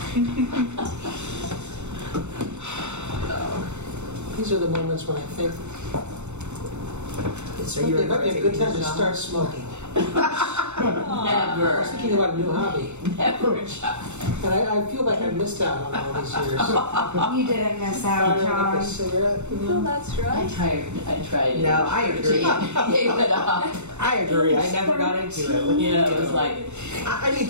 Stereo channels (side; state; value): left; late; 0.82 ms